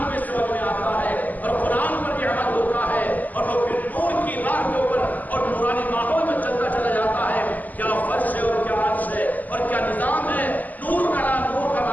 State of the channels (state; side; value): late; right; 0.081 ms